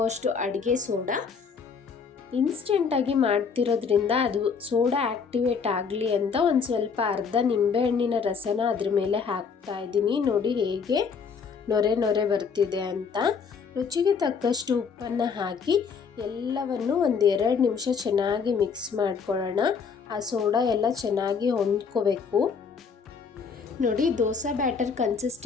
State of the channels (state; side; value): quieter; right; 5.8 dB